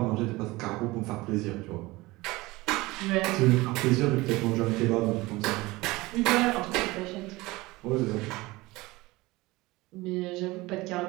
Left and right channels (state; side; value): quieter; left; 21.0 dB